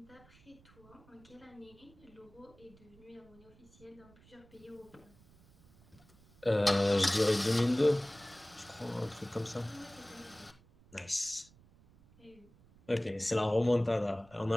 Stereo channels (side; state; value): right; noise; rumble, 26 dB below the sound